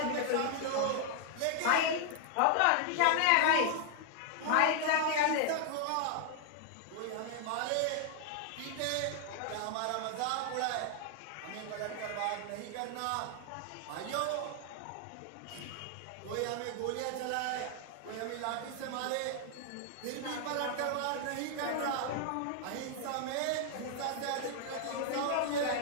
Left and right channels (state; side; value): different; both; correlation 0.00